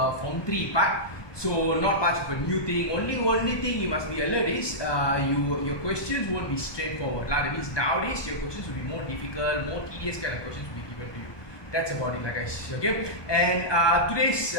Form 3 part. So, not much of a new thing. Only thing you must be alert is your questions won't be straightforward. That means nowadays your questions will be more difficult, more tedious kind of questions will be given to you. That's about it, guys. Okay, and today's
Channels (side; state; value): right; late; 1.2 ms